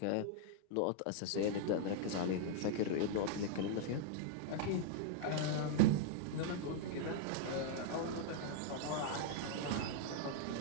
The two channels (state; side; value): different; both; correlation -0.01